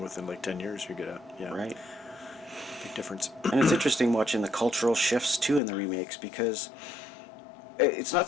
within like 10 years, you get right. Big difference. And it's interesting watching the cultural shifts too in the remakes, because it's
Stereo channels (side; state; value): right; drops out; at 5.6 s